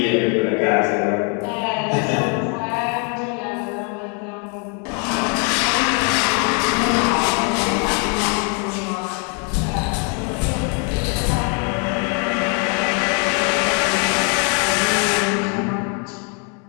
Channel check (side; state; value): right; quieter; 38.4 dB